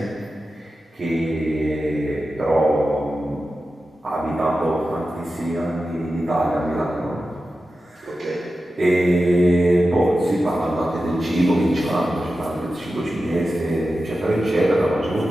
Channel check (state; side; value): normal; both; correlation 0.92